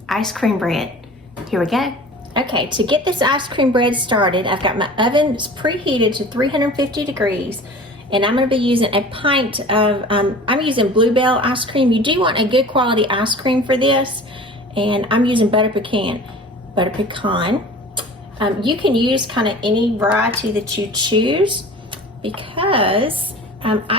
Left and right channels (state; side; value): normal; both; correlation 0.41